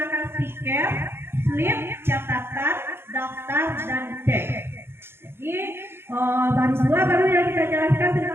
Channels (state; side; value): late; left; 0.11 ms